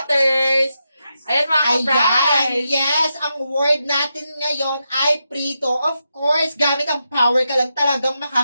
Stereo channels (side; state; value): both; inverted; correlation -0.86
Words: Ayan mga Ayan, ka-prize! yes, ang word natin ngayon ay prito. Of course, gamit ang power ka lang talagang